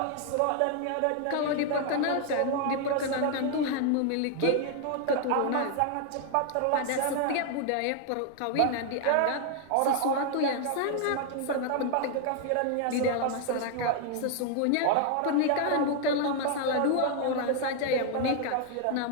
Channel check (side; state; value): both; different; correlation 0.00